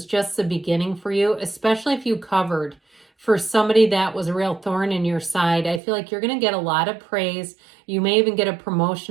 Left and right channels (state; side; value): drops out; left; at 5.8 s